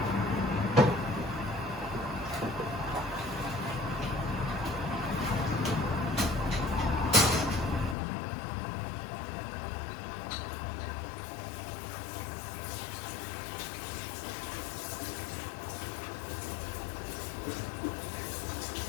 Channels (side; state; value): right; drops out; at 8.0 s